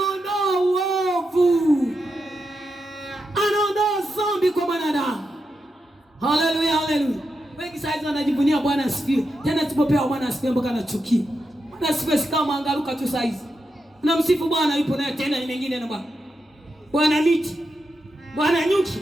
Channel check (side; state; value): both; normal; correlation 0.87